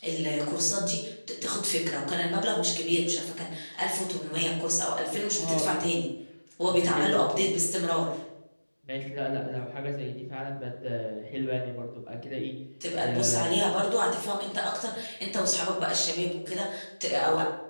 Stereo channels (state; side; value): inverted; both; correlation -1.00